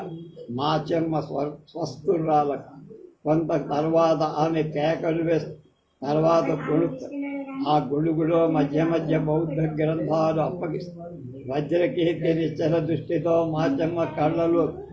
మాచమ్మ స్వస్థురాలకు. కొంత తర్వాత ఆమె కేకలు వేస్తూ తర్వాత గొడుగుతారు. ఆ గొడుగులో మధ్య మధ్య బౌద్ధ గ్రంథాలు అప్పగిస్తారు. వజ్రకీర్తి నిశ్చల దృష్టితో మాచమ్మ కళ్ళలో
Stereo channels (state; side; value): identical; both; correlation 1.00